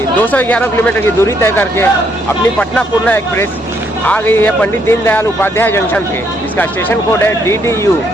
211 किलोमीटर की दूरी तय करके अपनी पटना पूर्णा एक्सप्रेस आ गई है पंडित दीनदयाल उपाध्याय जंक्शन पे, जिसका स्टेशन कोड है DDU।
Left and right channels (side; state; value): both; normal; correlation 0.72